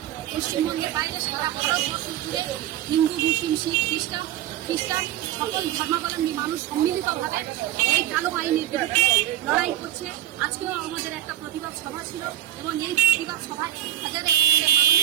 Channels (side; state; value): left; quieter; 12.9 dB